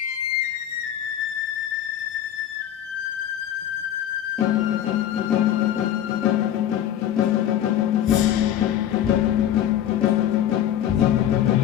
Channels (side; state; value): right; quieter; 11.0 dB